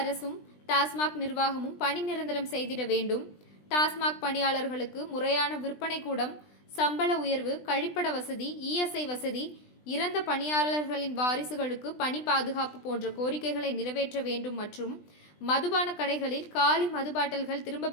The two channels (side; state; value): right; late; 20 ms